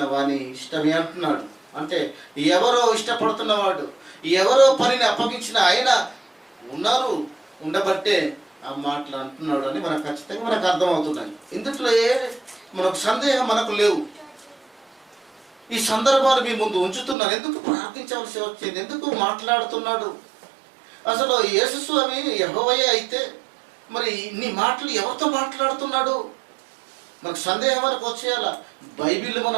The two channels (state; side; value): drops out; left; at 17.2 s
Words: వాని ఇష్టమే అంటున్నాడు. అంటే ఎవరో ఇష్టపడుతున్నవాడు, ఎవరో పనిని అప్పగించిన ఆయన ఉండబట్టే ఆ మాటలు అంటున్నాడు అని మనకు ఖచ్చితంగా మనకు అర్థమవుతున్నాయి. ఇందులో మనకు సందేహం మనకు లేవు. ఈ సందర్భాలు మీ ముందు ఉంచుతున్నాను. ఎందుకు ప్రార్థించవలసి వచ్చింది, ఎందుకు మాట్లాడుతున్నాడు? అసలు యేసు స్వామి యెహోవాయే అయితే మరి ఇన్ని మాటలు ఎవరితో మాట్లాడుతున్నాడు? మనకు సందేహం మనకు వచ్చేయాల. బైబిల్